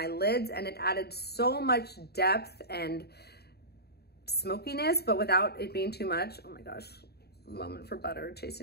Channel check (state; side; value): late; right; 0.47 ms